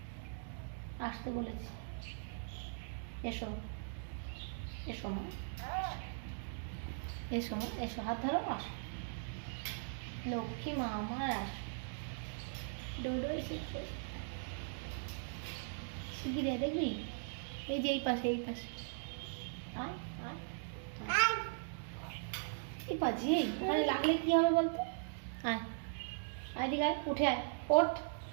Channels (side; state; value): left; silent; digital silence